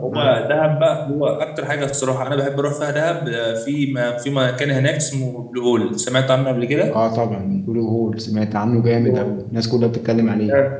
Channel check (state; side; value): identical; both; correlation 1.00